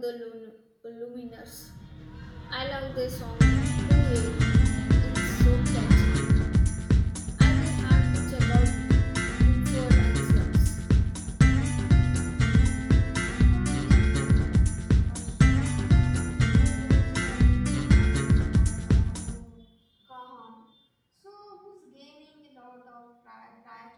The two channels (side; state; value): both; identical; correlation 1.00